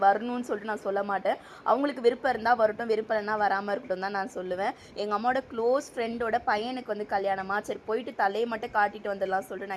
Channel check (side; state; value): both; identical; correlation 1.00